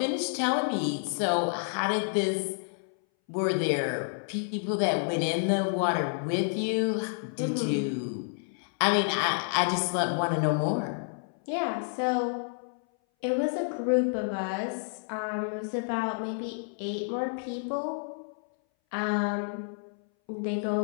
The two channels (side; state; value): right; silent; 58 dB below the other